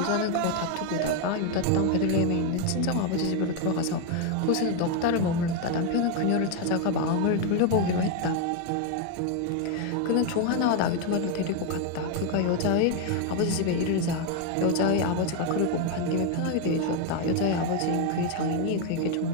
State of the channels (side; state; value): both; different; correlation 0.01